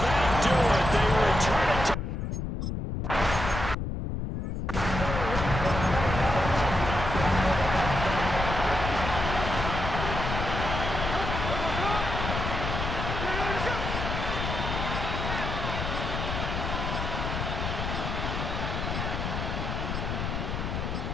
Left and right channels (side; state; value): left; noise; rumble, 3 dB below the sound